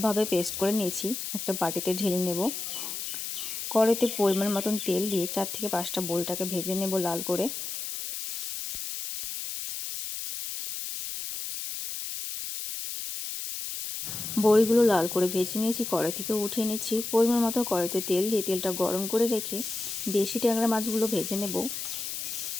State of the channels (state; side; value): noise; left; hiss, 5 dB below the sound